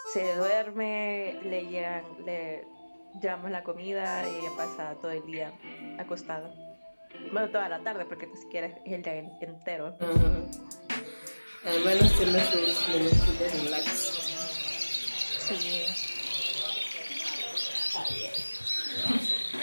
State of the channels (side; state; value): both; inverted; correlation -1.00